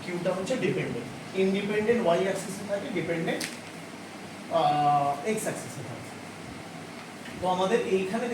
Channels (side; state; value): both; identical; correlation 1.00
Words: কিউটা হচ্ছে ডিপেন্ডেন্ট। ইন্ডিপেন্ডেন্ট ওয়াই অ্যাক্সিসে থাকে, ডিপেন্ডেন্ট এক্স অ্যাক্সিসে থাকে। তো আমাদের এইখানে